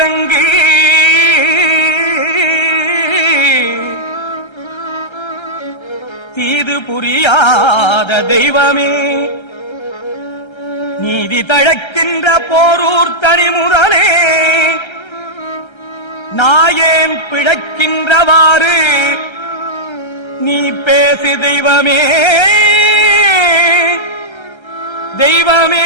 தீது புரியாத தெய்வமே, நீதி தழைக்கின்ற போரூர் தனிமுதலே, நாயேன் பிழைக்கின்றவாறு நீ பேசு தெய்வமே,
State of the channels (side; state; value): right; late; 1.3 ms